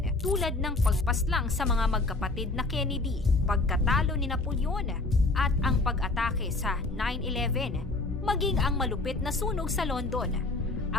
tulad ng pagpaslang sa mga magkapatid na Kennedy, pagkatalo ni Napoleon at ang pag-atake sa 9/11, maging ang malupit na sunog sa London,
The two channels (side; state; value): right; quieter; 3.2 dB